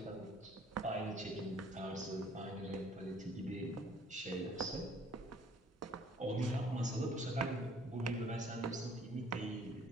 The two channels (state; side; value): normal; both; correlation 0.57